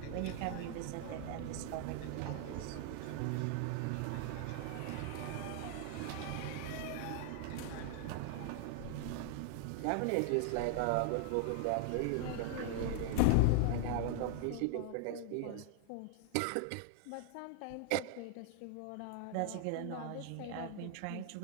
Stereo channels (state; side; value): different; both; correlation 0.00